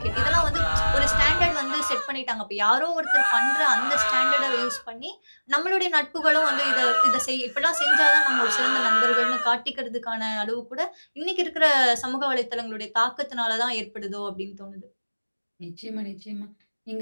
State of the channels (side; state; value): both; inverted; correlation -1.00